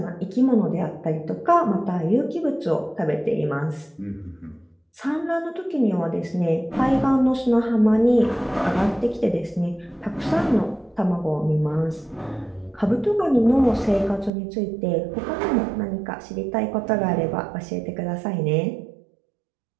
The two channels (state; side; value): drops out; left; at 14.3 s